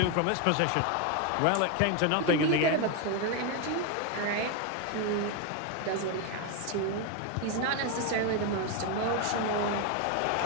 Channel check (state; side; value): different; both; correlation 0.02